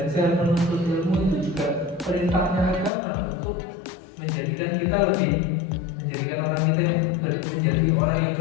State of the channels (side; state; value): right; drops out; at 2.9 s